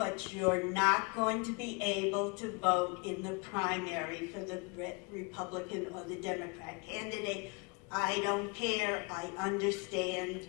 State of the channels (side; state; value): right; quieter; 31.2 dB